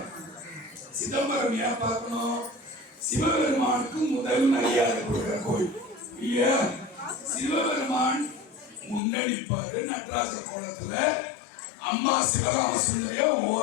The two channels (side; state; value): right; drops out; at 9.0 s